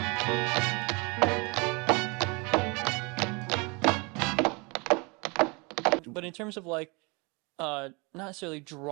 But in terms of like, not necessarily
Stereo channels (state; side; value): quieter; left; 29.1 dB